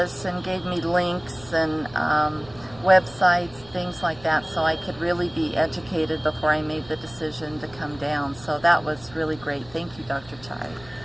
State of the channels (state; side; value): noise; right; rumble, 22 dB below the sound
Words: and gave me links and websites, things like that, so I could really be educated before I made the decision to come down. So that was really great. Thank you, Dr. Chai.